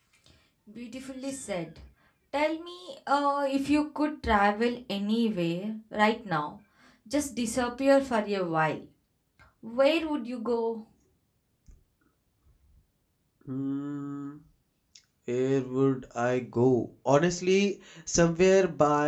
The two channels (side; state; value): both; identical; correlation 1.00